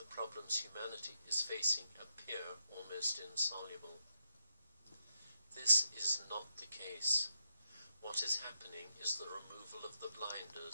problems humanity is facing appear almost insoluble. This is not the case. What is happening is the removal of the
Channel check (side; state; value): both; inverted; correlation -0.84